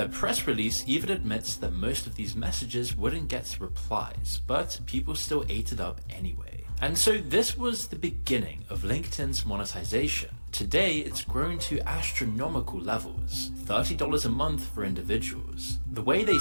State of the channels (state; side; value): inverted; both; correlation -1.00